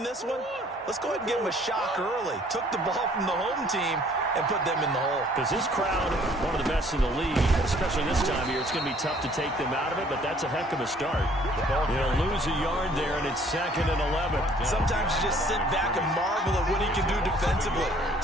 this one. Let's go ahead and give them a shock early. Took the ball from the home team and put them in the hole. Because this crowd, one of the best in the league, especially this time of year, it's going to be tough to take them out of it, but that's a heck of a start. They'll lose a yard there, and it's 2nd and 11. Sometimes you just sit back and marvel at what he can do defensively.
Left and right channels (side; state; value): both; normal; correlation 0.58